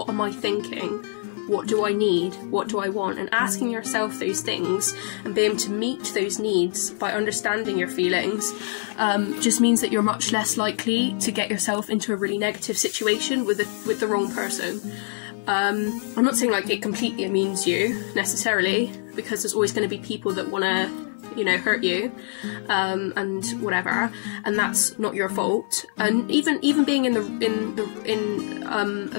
am I thinking? What do I need? What do I want? And asking yourself those things and being able to meet those needs by understanding your feelings just means that you're much less likely to get yourself into a really negative situation with the wrong person. I'm not saying like it completely immunes you necessarily, because there's always going to be people that want to, you know, hurt you and whatever, and that's not your fault. And even being in a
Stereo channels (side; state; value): right; silent; digital silence